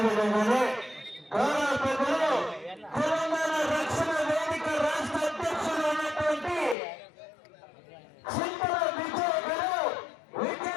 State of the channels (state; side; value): drops out; right; at 6.8 s